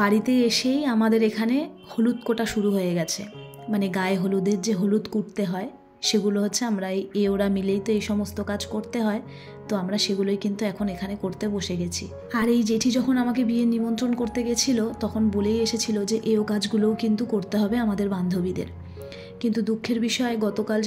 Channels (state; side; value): identical; both; correlation 1.00